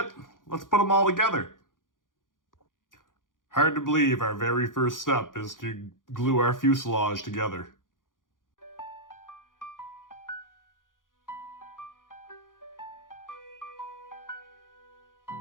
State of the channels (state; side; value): late; right; 0.89 ms